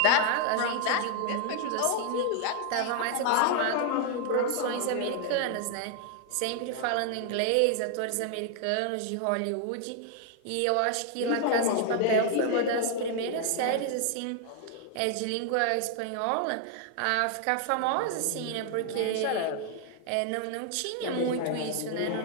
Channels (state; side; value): different; both; correlation 0.00